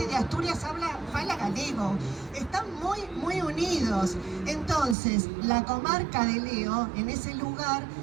de Asturias fala galego. Están muy unidos. Entonces, la comarca del Eo, en ese lugar,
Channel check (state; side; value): drops out; left; at 5.0 s